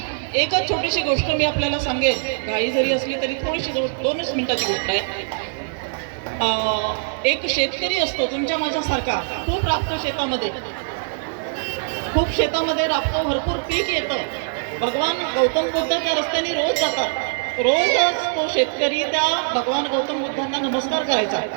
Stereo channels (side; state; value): left; silent; digital silence